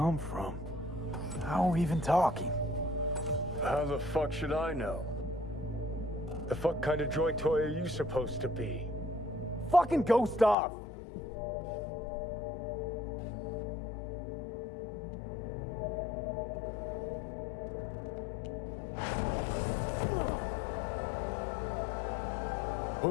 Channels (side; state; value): right; drops out; at 10.6 s